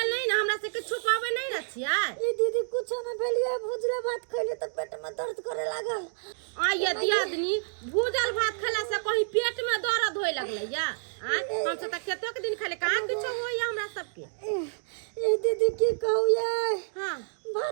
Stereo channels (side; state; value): left; silent; digital silence